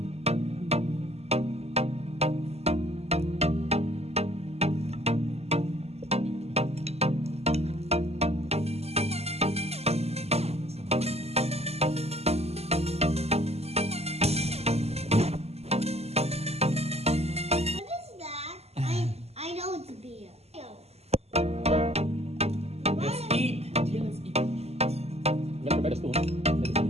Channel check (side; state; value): left; late; 0.30 ms